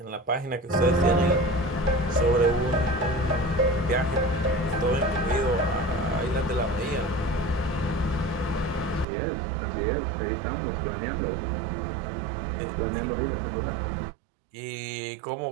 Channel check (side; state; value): left; drops out; at 9.1 s